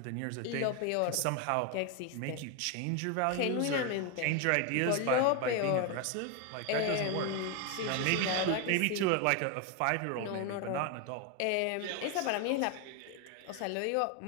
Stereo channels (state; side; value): different; both; correlation 0.01